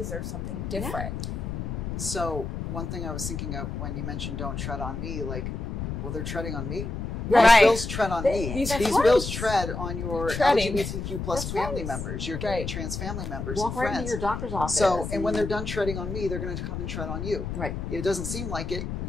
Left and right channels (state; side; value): noise; left; rumble, 5 dB below the sound